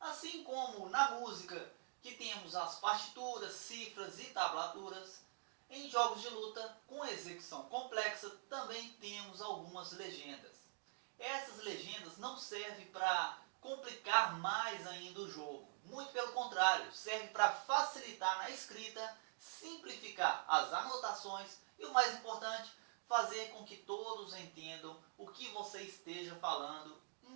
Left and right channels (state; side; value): silent; left; digital silence